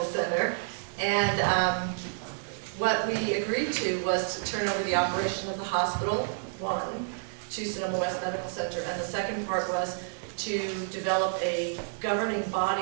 Center, and what we agreed to was to turn over the operation of the hospital, one, to Sonoma West Medical Center, and the second part was to develop a governing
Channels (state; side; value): silent; left; digital silence